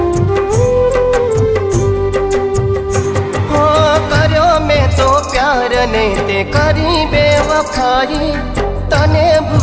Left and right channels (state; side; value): identical; both; correlation 1.00